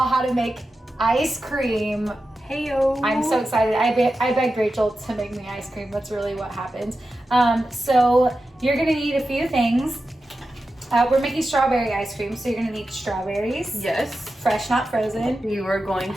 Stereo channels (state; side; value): normal; both; correlation 0.92